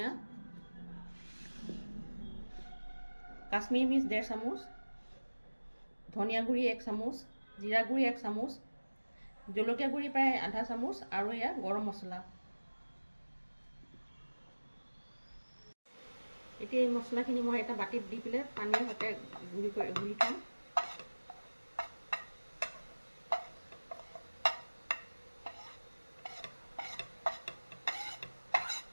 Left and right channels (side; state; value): both; inverted; correlation -1.00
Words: কাশ্মীৰী মিৰ্চ 1.5 চামুচ, ধনিয়া গুড়ি 1 চামুচ, জিৰা গুড়ি 1 চামুচ, জলকীয়া গুড়ি প্ৰায় আধা চামুচ আৰু এয়া গৰম মছলা। এতিয়া এই মছলাখিনি মই এটা বাটিত দি পেলাই পানীৰ সৈতে গুলি থ'ম।